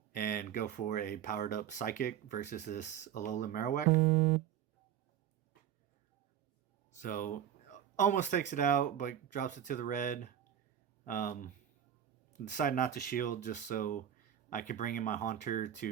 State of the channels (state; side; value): quieter; left; 10.0 dB